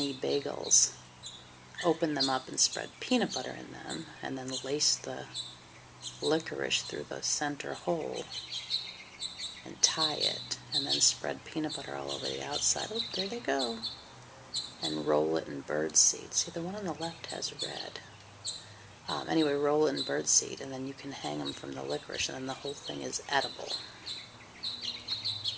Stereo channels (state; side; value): identical; both; correlation 1.00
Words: bagels, open them up and spread peanut butter in them, and then lace the licorice through the center hole and tie it, and then spread peanut butter all over the outside. Oh, there they go. And roll it in bird seed. See, the one on the left has red. Anyway, roll it in bird seed, and then you can hang them from the licorice, and then the whole thing is edible.